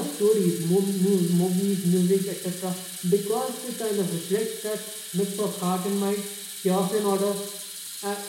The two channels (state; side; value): identical; both; correlation 1.00